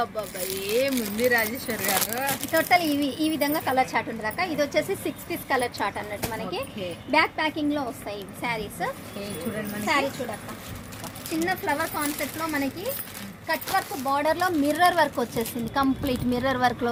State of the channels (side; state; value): both; identical; correlation 1.00